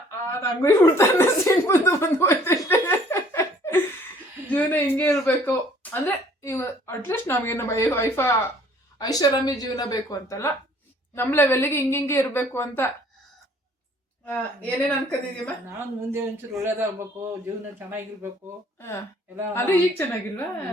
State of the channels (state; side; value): normal; both; correlation 0.57